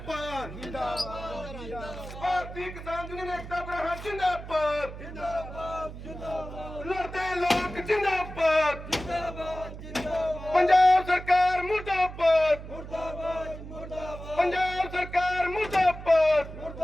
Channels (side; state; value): right; noise; hum, 12 dB below the sound